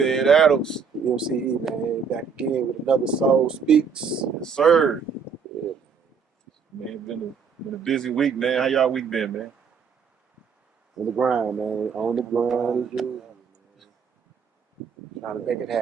Adams. MCE, man. Back again with another Soul Speaks. Yes, sir. Yeah, Man, been a busy week, man. How y'all week been, man? on the grind, man. On the grind as usual, man. Trying to make it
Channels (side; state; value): left; quieter; 6.2 dB